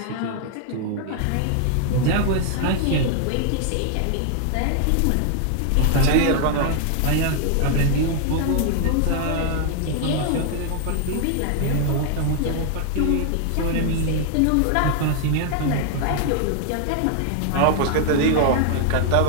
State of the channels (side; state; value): both; different; correlation 0.00